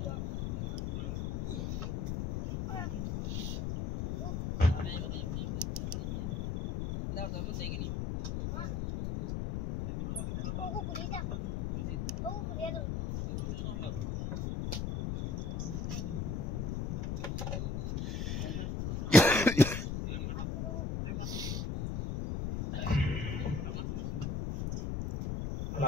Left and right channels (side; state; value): left; noise; rumble, 2 dB below the sound